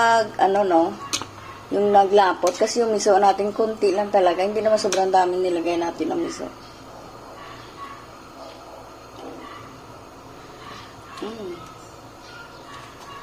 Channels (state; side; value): identical; both; correlation 1.00